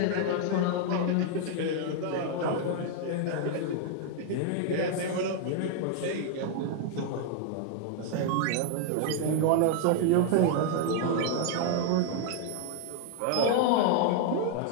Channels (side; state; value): both; different; correlation 0.00